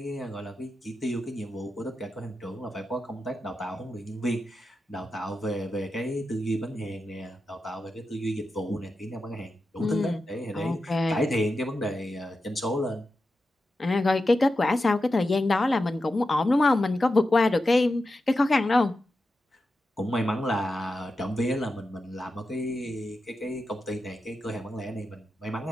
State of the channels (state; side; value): normal; both; correlation 0.90